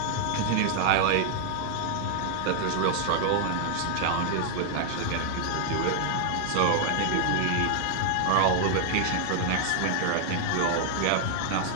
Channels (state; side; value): different; both; correlation 0.00